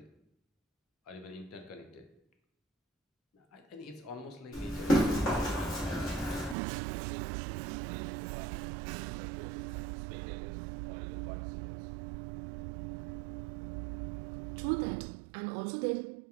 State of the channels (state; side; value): drops out; left; at 6.6 s